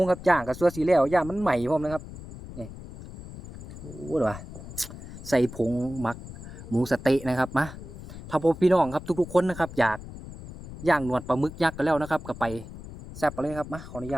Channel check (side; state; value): left; noise; rumble, 13 dB below the sound